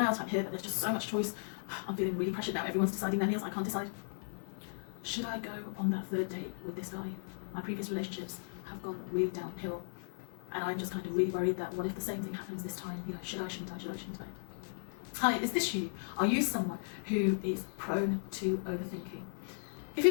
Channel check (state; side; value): silent; right; digital silence